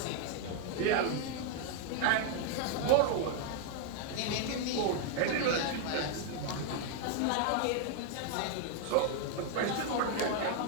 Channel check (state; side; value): different; both; correlation 0.00